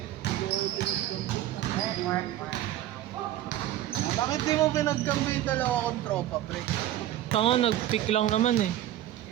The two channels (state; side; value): quieter; left; 13.2 dB